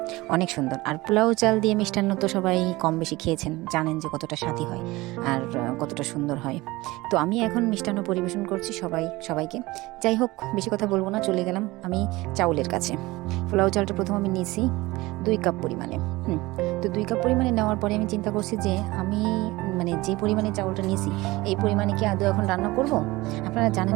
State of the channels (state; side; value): quieter; left; 20.4 dB